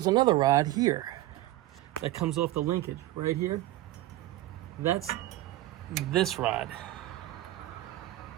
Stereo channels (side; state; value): left; quieter; 16.1 dB